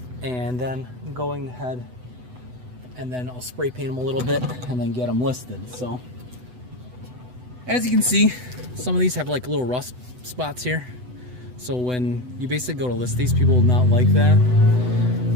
and then going ahead and then I'll spray paint them a little bit and then get them listed. So as you can see, some of these have like little rust spots here. So when you basically go to list these, people will not like that.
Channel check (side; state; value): left; late; 8.0 ms